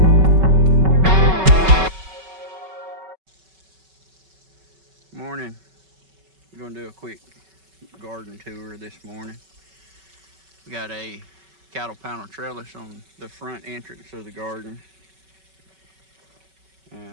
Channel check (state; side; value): late; left; 5.3 ms